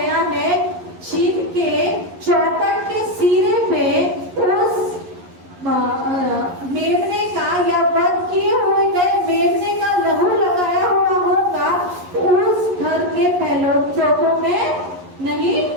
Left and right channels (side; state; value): left; late; 11 ms